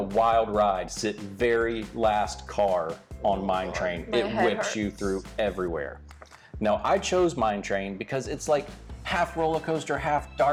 wild ride, sit very last car on Mine Train. My It head whips hurts. you through everywhere. Now, I chose Mine Train because it's like half roller coaster, half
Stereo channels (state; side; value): identical; both; correlation 1.00